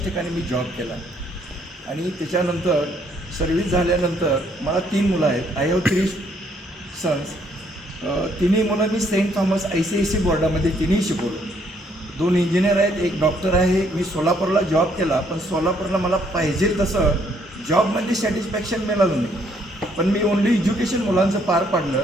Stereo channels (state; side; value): normal; both; correlation 0.68